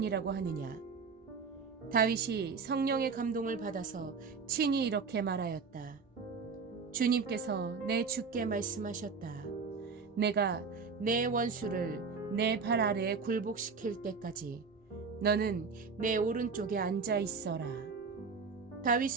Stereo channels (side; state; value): left; quieter; 5.1 dB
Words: 하느냐. 다윗이 성령의 감동을 받아서 친히 이렇게 말하였다. 주님께서 내 주께 말씀하셨다. 내가 내 원수를 내 발 아래에 굴복시킬 때까지 너는 내 오른쪽에 앉아 있어라. 다윗